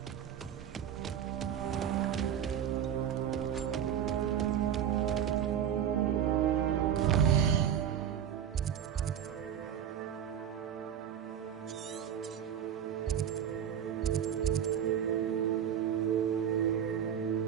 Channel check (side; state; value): left; quieter; 9.3 dB